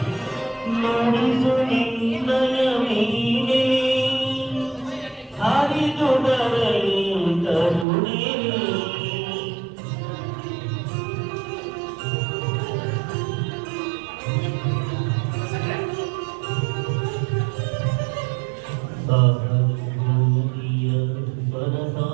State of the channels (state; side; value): drops out; left; at 7.9 s